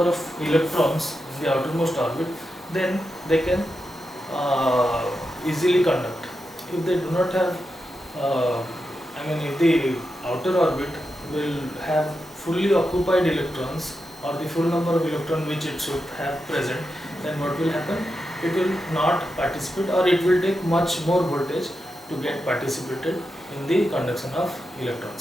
of electrons in the outermost orbit, then they can easily conduct. If they do not have, if the outer orbit will have fully occupied electrons or the full number of electrons which it should have present, then what will happen? It will not participate, or it will take much more voltage to get participated in the conduction of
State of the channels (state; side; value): normal; both; correlation 0.88